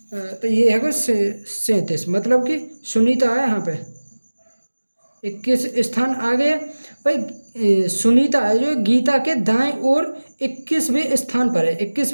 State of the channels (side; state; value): both; inverted; correlation -1.00